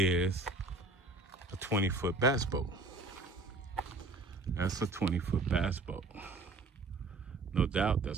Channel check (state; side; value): quieter; left; 3.2 dB